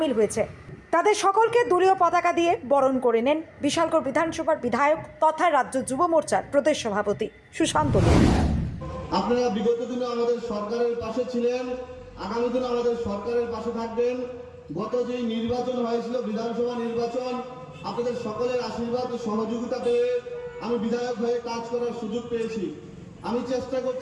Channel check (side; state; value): both; identical; correlation 1.00